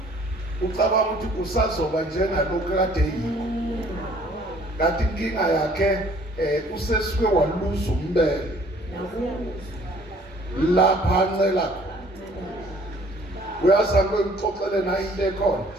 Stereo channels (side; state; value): both; normal; correlation 0.57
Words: Ucabanga ukuthi usazoba njengalokho kade yikho. Kanti inkinga yakhe usesike waluza umbele. Lapha ncela. Uyazama ukuxoxela na into ekhona.